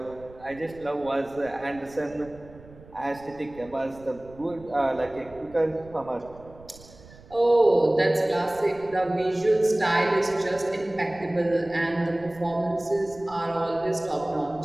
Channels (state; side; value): noise; right; rumble, 21 dB below the sound